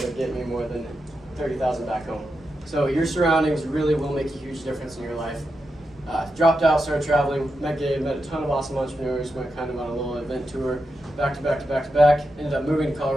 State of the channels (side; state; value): both; normal; correlation 0.87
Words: get me more than 30,000 back home. So your surroundings really will make a huge difference in your life. Dropped out, started traveling, met Gabe, met a ton of awesome entrepreneurs, went kind of on a little event tour, back to back to back to back. Ended up moving to